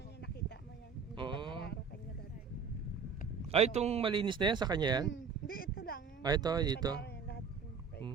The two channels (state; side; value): quieter; left; 5.8 dB